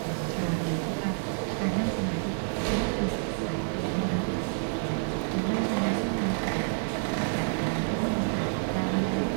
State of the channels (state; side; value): silent; left; 59 dB below the other